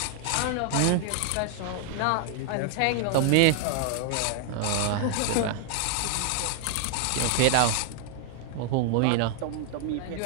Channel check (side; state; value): both; different; correlation 0.00